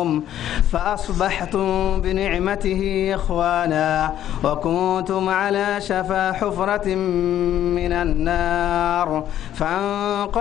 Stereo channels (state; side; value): quieter; right; 11.5 dB